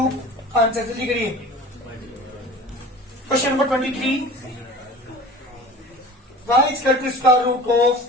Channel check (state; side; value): normal; both; correlation 0.40